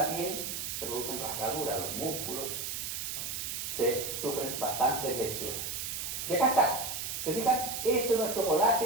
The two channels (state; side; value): noise; right; hiss, 4 dB below the sound